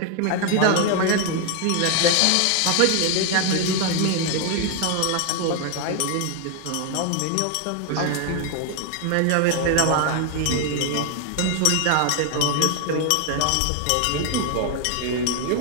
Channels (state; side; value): different; both; correlation 0.01